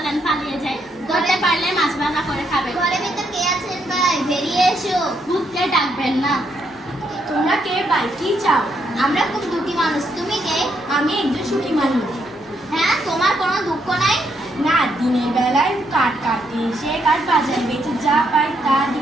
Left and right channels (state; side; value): normal; both; correlation 0.76